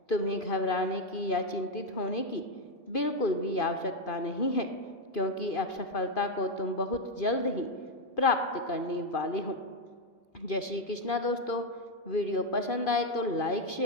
तुम्हें घबराने की या चिंतित होने की बिल्कुल भी आवश्यकता नहीं है, क्योंकि अब सफलता को तुम बहुत जल्द ही प्राप्त करने वाले हो। जय श्री कृष्णा दोस्तों, वीडियो पसंद आए तो लाइक,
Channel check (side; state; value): right; late; 2.5 ms